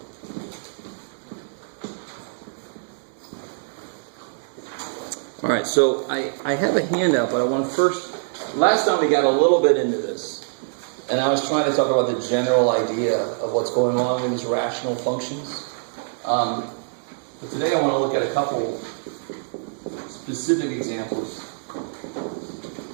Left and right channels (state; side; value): silent; left; digital silence